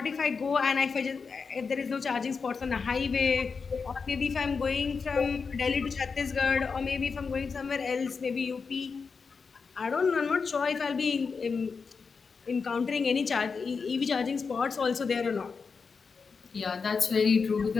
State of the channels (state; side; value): quieter; right; 5.2 dB